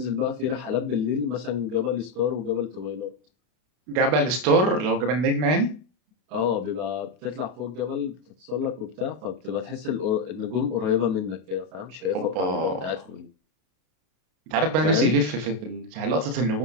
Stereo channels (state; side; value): late; left; 32 ms